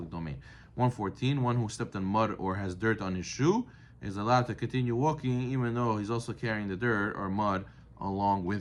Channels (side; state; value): both; identical; correlation 1.00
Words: domain. 114. One who stepped on mud or has dirt on his shoe is allowed to continue walking even though he's also carrying the dirt or mud along